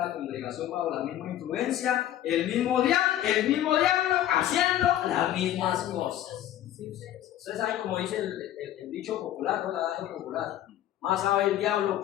congregación bajo la misma influencia, el mismo diablo haciendo las mismas cosas. Ustedes saben como dice el dicho popular, ¿no? El adagio popular: más sabe el diablo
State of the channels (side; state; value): right; quieter; 12.4 dB